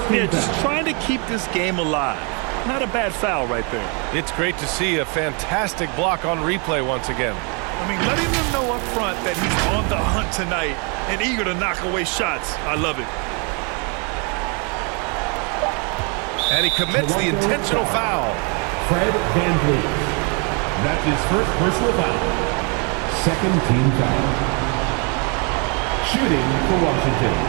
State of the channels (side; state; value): left; quieter; 34.7 dB